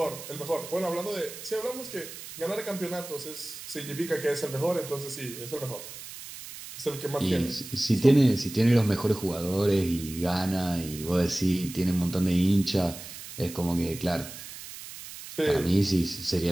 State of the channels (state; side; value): noise; right; hiss, 13 dB below the sound